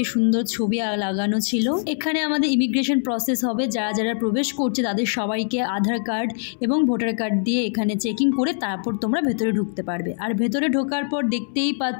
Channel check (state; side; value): silent; right; 63 dB below the other